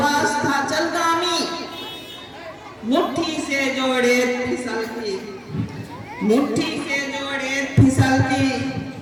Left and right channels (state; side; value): identical; both; correlation 1.00